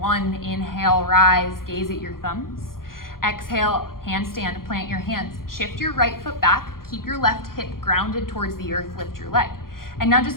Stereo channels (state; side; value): late; right; 0.92 ms